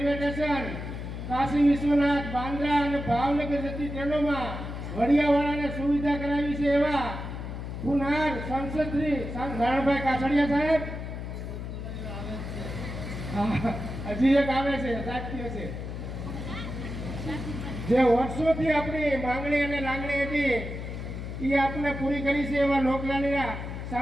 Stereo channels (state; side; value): noise; left; hum, 7 dB below the sound